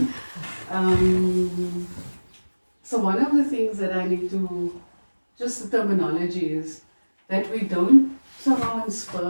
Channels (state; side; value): inverted; both; correlation -1.00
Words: So one of the things that I need to, just the terminology is that we don't